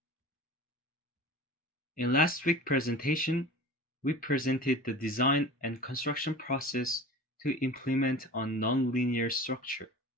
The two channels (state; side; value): normal; both; correlation 0.37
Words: In last week's presentation, we presented the design and construction process to implement a non-linear structure.